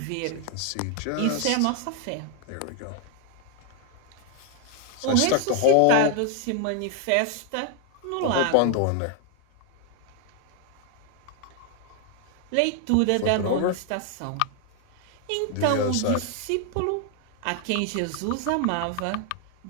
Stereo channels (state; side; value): different; both; correlation 0.00